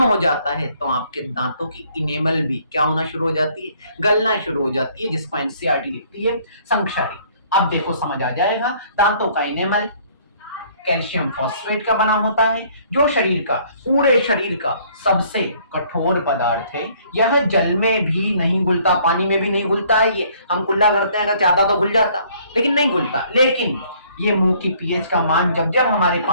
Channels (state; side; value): inverted; both; correlation -0.60